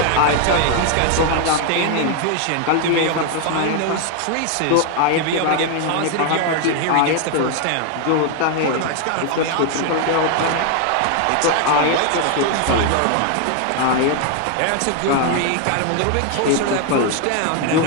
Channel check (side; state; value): both; different; correlation 0.01